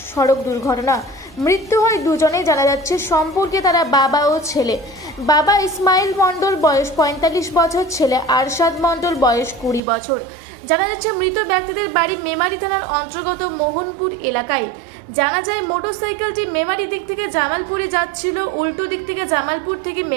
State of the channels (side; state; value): left; drops out; at 9.8 s